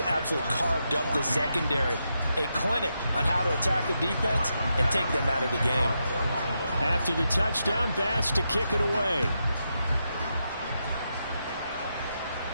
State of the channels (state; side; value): inverted; both; correlation -0.84